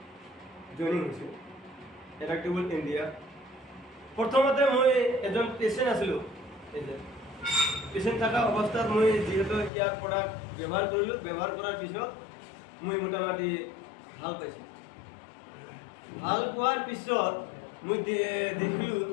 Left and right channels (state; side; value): drops out; right; at 9.7 s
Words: জইনিং হৈছোঁ এডাপ্টেবল ইণ্ডিয়া। প্ৰথমতে মই এজন পেচেণ্ট আছিলোঁ। পেচেণ্ট থকা অৱস্থাত মই যিহেতু ইয়াৰ প্ৰডাক্ট ব্যৱহাৰ কৰিলোঁ, ব্যৱহাৰ কৰাৰ পিছত মই মোটামুটি ভাল পাইছোঁ। ভাল পোৱাৰ পিছত মই দেখিলোঁ